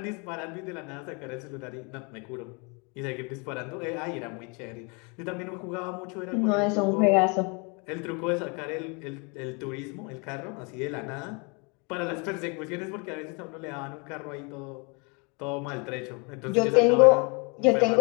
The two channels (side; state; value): right; quieter; 32.1 dB